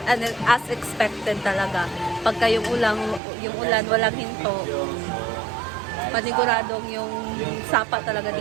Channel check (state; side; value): drops out; left; at 3.2 s